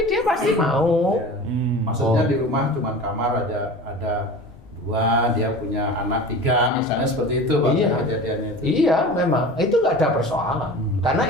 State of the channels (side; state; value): both; normal; correlation 0.36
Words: dia pasti mau. Maksudnya di rumah cuma kamar ada 2, dia punya anak 3, misalnya seperti itu Pak, Iya. kejadiannya itu. Iya, memang itu nggak ada persoalan. Karena